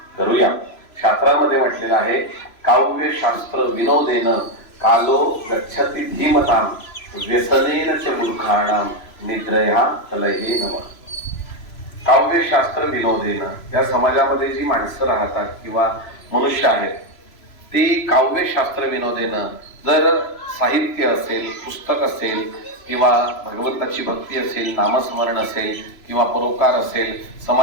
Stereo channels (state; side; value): late; right; 3.0 ms